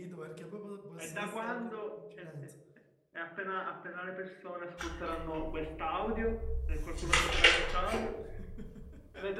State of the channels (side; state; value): both; identical; correlation 1.00